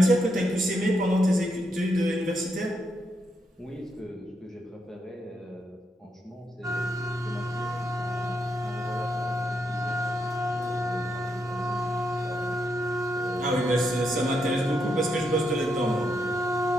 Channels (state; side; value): normal; both; correlation 0.80